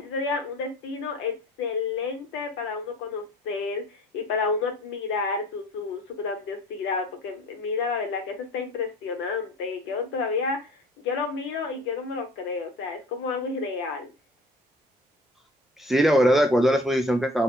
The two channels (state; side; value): normal; both; correlation 0.46